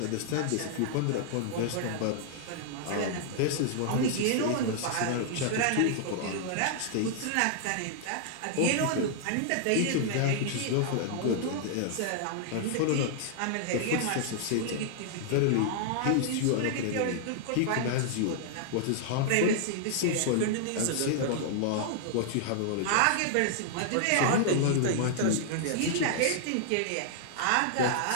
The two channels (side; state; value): both; different; correlation -0.01